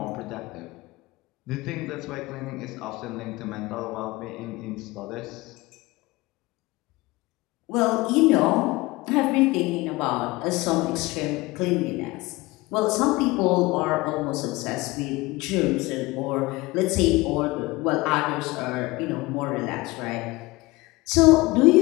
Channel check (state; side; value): quieter; right; 21.5 dB